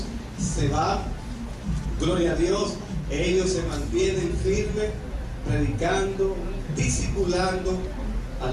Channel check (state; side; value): identical; both; correlation 1.00